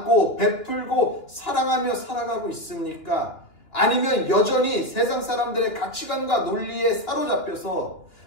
베풀고 사랑하며 살아가고 있습니까? 아니면 여전히 세상 사람들의 가치관과 논리에 사로잡혀서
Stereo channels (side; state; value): right; late; 2.8 ms